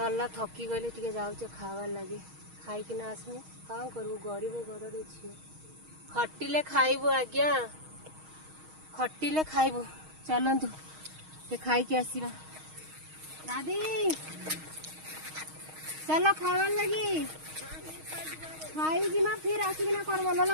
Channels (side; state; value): left; late; 6.4 ms